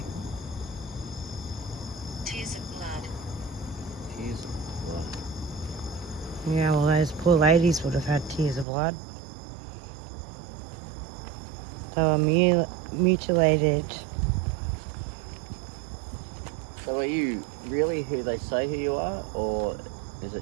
Tears of blood. Tears of blood. Yeah, well, those poor ladies would have had tears of blood. They were mutilated. So are you really who they say who you are, or is it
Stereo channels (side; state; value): left; drops out; at 8.7 s